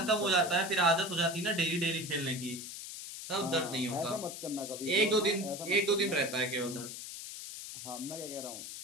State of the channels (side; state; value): left; noise; hiss, 9 dB below the sound